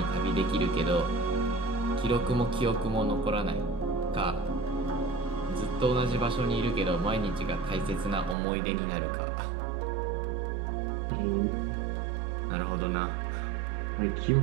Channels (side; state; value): left; drops out; at 8.3 s